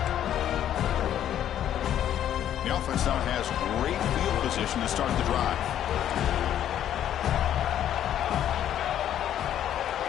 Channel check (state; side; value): quieter; right; 10.8 dB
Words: The offense now has great field position to start the drive.